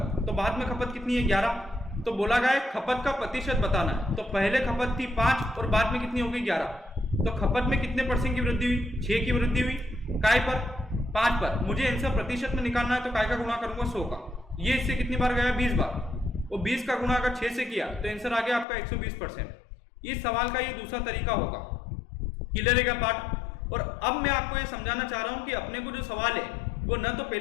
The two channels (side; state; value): right; drops out; at 18.7 s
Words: तो बाद में खपत कितनी है 11। तो बोला गया है खपत का प्रतिशत बताना है। तो पहले खपत थी 5 और बाद में कितनी हो गई 11। तो खपत में कितने % की वृद्धि हुई, 6 की वृद्धि हुई। काय पर 5 पर। मुझे आंसर प्रतिशत में निकालना है तो काय का गुणा करूंगा 100 का। ये इससे कितनी बार गया 20 बार, और 20 का गुणा अगर 6 से किया तो आंसर आ गया आपका 120%। इस सवाल का ये दूसरा तरीका होगा। क्लियर है क्या पार्ट। और अब मैं आपको ये समझाना चाह रहा हूं कि अपने को जो सवाल है वो न तो